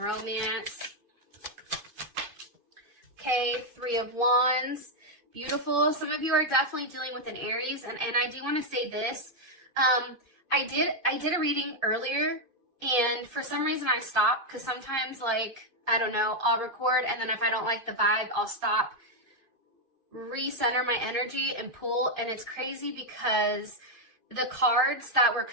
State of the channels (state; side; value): late; left; 2.5 ms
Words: Okay, Three of Wands. Beautiful. Some of you are definitely dealing with an Aries, and I do want to say this. I did a reading earlier, and for some reason I stopped because sometimes, like, I don't know, I'll record, and then if I don't like the vibe, I'll stop, recenter my energy, and pull. And it's crazy because the cards that were